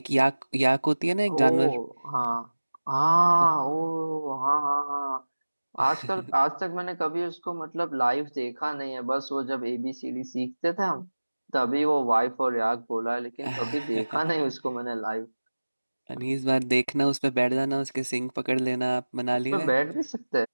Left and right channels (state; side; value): inverted; both; correlation -1.00